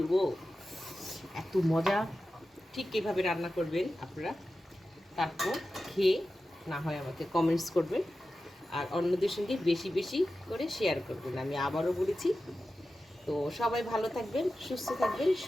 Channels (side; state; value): both; normal; correlation 0.93